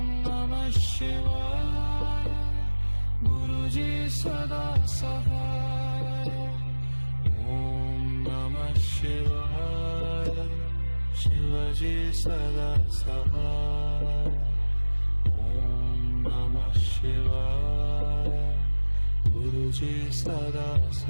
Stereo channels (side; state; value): both; inverted; correlation -1.00